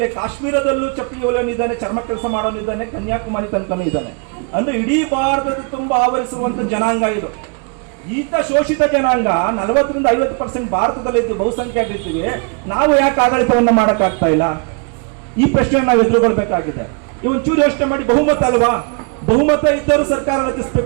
ಕಾಶ್ಮೀರದಲ್ಲೂ ಚಪ್ಪಲಿ ಹೊಲಿಯೋನಿದ್ದಾನೆ, ಚರ್ಮ ಕೆಲಸ ಮಾಡೋನಿದ್ದಾನೆ, ಕನ್ಯಾಕುಮಾರಿ ತನಕನೂ ಇದ್ದಾನೆ. ಅಂದ್ರೆ ಇಡೀ ಭಾರತದ ತುಂಬಾ ಆವರಿಸುವಂತ ಜನಾಂಗ ಇದು. ಈತ ಶೋಷಿತ ಜನಾಂಗ 40ರಿಂದ 50% ಭಾರತದಲ್ಲಿ ಇದ್ದು ಬಹುಸಂಖ್ಯಾತರಿದ್ದೀವಿ. ನಾವು ಯಾಕೆ ಆಡಳಿತವನ್ನ ಮಾಡಕ್ ಆಗ್ತಾ ಇಲ್ಲ? ಈ ಪ್ರಶ್ನೆ ನಾವು ಎದುರುಗೊಳ್ಬೇಕಾಗಿದೆ. ಒಂಚೂರು ಯೋಚನೆ ಮಾಡಿ. ಬಹುಮತ ಅಲ್ವಾ? ಬಹುಮತ ಇದ್ದರೂ ಸರ್ಕಾರ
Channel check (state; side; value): quieter; left; 35.7 dB